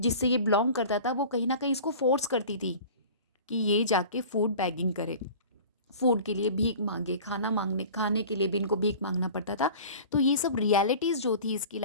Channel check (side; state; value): both; inverted; correlation -0.40